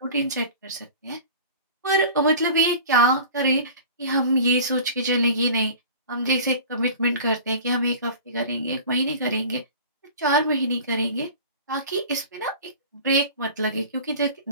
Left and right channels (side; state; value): both; inverted; correlation -0.40